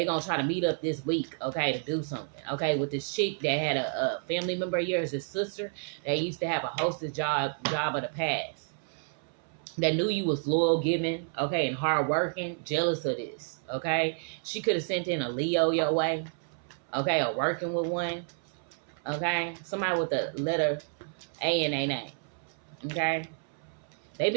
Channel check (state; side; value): silent; left; 58 dB below the other